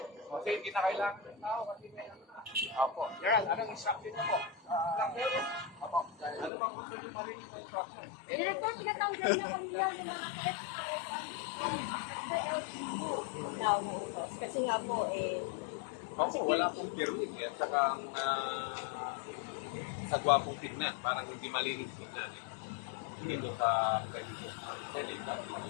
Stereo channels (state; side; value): drops out; right; at 6.5 s